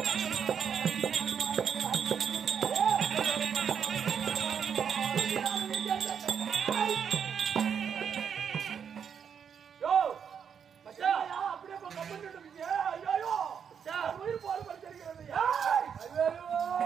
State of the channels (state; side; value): quieter; left; 7.4 dB